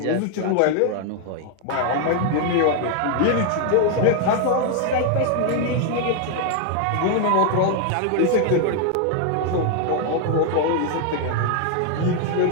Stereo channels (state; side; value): different; both; correlation 0.00